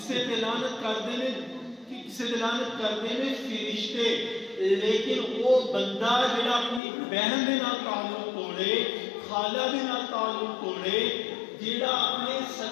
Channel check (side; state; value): right; drops out; at 6.8 s